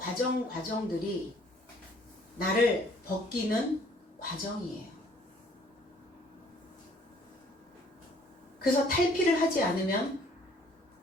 나를 벗기는 과정이에요. 그래서 탈피를 하지 않으면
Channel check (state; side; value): normal; both; correlation 0.59